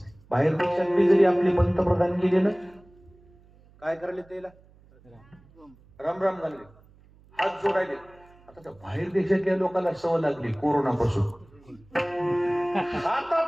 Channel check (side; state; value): right; noise; hum, 27 dB below the sound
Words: बाहेर देशात बी जरी आपले पंतप्रधान गेले ना, काय करायला त्याला? राम राम झाले, हात जोडायले. आता त्या बाहेर देशातल्या लोकांना सवय लागली कोरोनापासून.